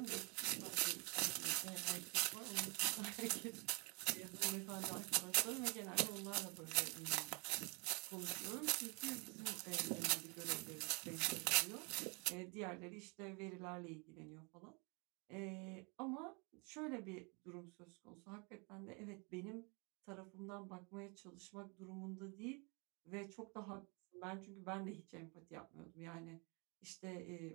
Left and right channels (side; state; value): left; quieter; 32.2 dB